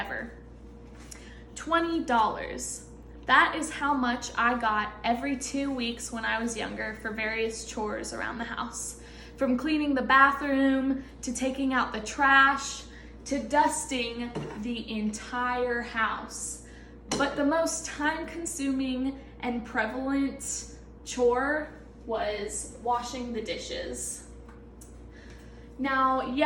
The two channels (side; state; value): both; identical; correlation 1.00